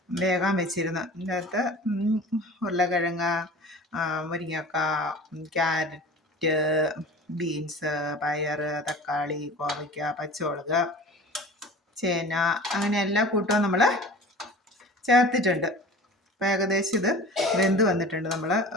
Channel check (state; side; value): normal; both; correlation 0.39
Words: വേഗം വെച്ചിരുന്നു. ഇതിൻ്റെ അകത്ത് ഉരുളക്കിഴങ്ങ്, മുരിങ്ങക്ക, ക്യാരറ്റ്, ബീൻസ്, പയർ, തക്കാളി, കോവയ്ക്ക, പച്ചമുളക്, ചേന, അങ്ങനെ എല്ലാ കൂട്ടവും നമ്മൾ ചേർത്തിട്ടുണ്ട്. അപ്പോൾ ഏകദേശം ഇത് വെന്ത് വന്നിട്ടുണ്ട്. നമ്മൾ